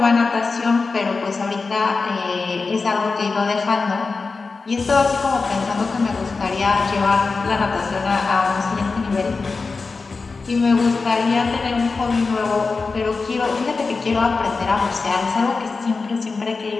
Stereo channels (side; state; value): right; quieter; 4.2 dB